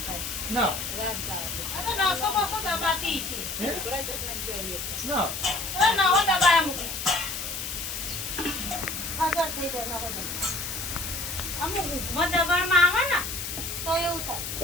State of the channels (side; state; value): left; noise; hiss, 5 dB below the sound